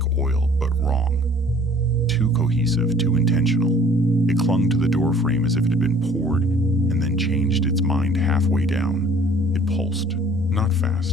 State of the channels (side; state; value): both; normal; correlation 0.53